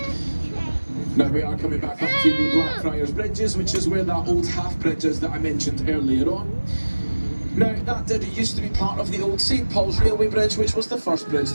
Now we are coming back up to the Blackfriars Bridges, which is where that old half bridge is that I mentioned earlier on. Now, that used to be part of the old St Paul's Railway Bridge, which was the first bridge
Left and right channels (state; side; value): inverted; both; correlation -1.00